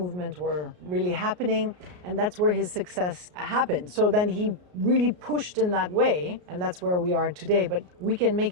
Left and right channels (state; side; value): late; left; 33 ms